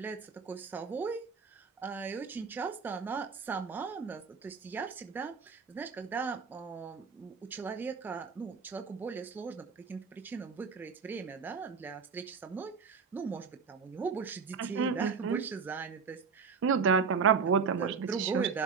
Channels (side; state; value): left; quieter; 5.7 dB